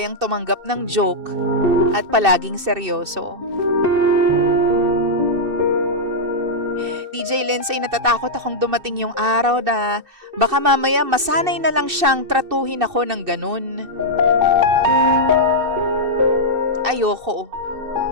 tumanggap ng joke at palaging seryoso. DJ Lindsay, natatakot akong dumating yung araw na baka mamaya masanay na lang siyang tratuhin ako ng ganun. Ayoko.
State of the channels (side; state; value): left; late; 2.6 ms